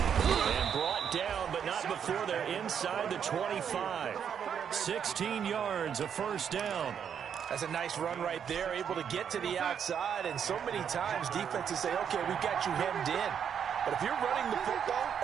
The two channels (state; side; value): quieter; left; 8.0 dB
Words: And brought down, but not before they're inside the 25. 16 yards, a first down. That's a nice run right there, able to get to the outside, and so many times defenses say, okay, we've got you hemmed in. But if you're running the football,